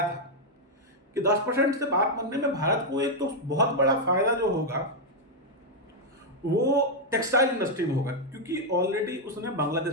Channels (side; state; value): both; normal; correlation -0.01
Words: था कि 10% से बात बनने में भारत को एक तो बहुत बड़ा फायदा जो होगा वो टेक्सटाइल इंडस्ट्री में होगा, क्योंकि ऑलरेडी उसने